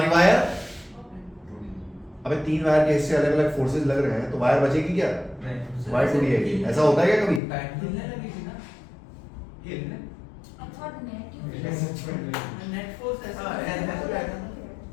वायर? अबे तीन वायर के हिस्से अलग अलग फोर्सेस लग रहे हैं तो वायर बचेगी क्या? नहीं। वायर टूटी जाएगी। ऐसा होता है क्या कभी? हिलने लगेगी ना? हिलने? I thought net you net force ऐसा हाँ, है।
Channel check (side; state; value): right; drops out; at 7.4 s